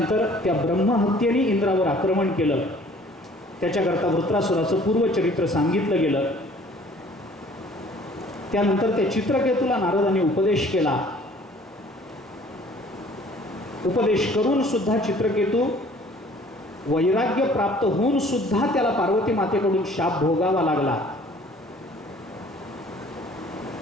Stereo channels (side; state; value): both; normal; correlation 0.54